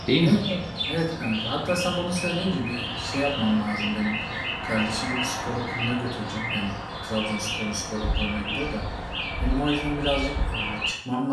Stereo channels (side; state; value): both; identical; correlation 1.00